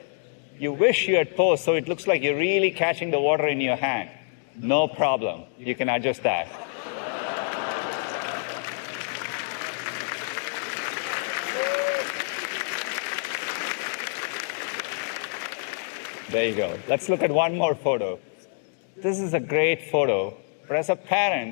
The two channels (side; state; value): right; silent; digital silence